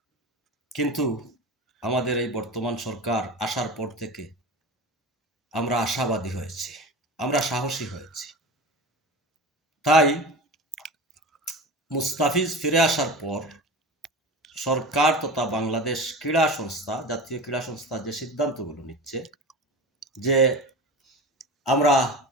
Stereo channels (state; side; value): normal; both; correlation 0.31